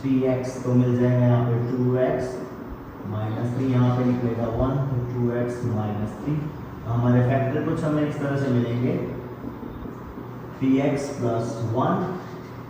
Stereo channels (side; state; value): both; identical; correlation 1.00